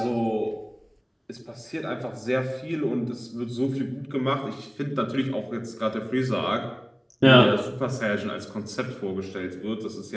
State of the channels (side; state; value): both; identical; correlation 1.00